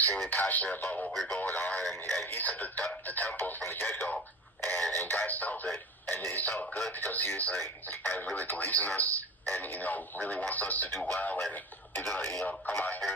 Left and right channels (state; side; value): normal; both; correlation 0.34